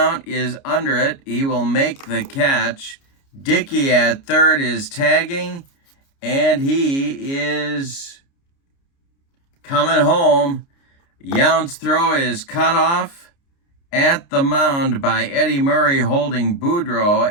is under it. He will make the catch. Dickey at third is tagging, and he is coming home. Yount's throw is cut off at the mound by Eddie Murray holding Boudreaux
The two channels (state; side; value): late; right; 29 ms